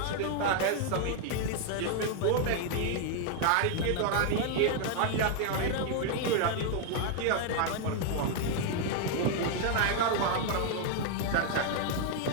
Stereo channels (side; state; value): both; different; correlation 0.00